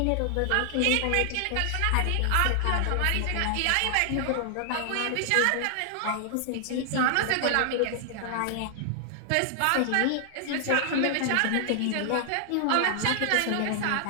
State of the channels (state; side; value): different; both; correlation 0.00